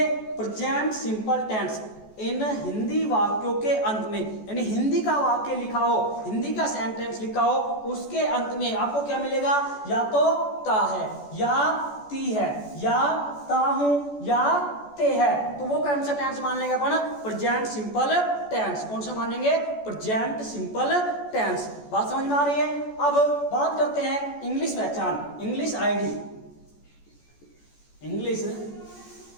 प्रेजेंट सिंपल टेंस इन हिंदी वाक्यों के अंत में, यानी हिंदी का वाक्य लिखा हो, हिंदी का सेंटेंस लिखा हो, उसके अंत में आपको क्या मिलेगा? या तो ता है, या ती है, या ता हूं, या ते है। तो वो कौन सा टेंस मान लेंगे अपन? Present simple tense. कौन सा मानेंगे? Present simple tense. बात समझ में आ रही है? अब बात करते हैं इंग्लिश पहचान, इंग्लिश आईडी। इंग्लिश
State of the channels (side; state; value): right; late; 14 ms